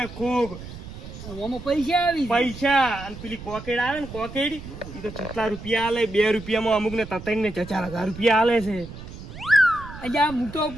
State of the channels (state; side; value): noise; right; rumble, 13 dB below the sound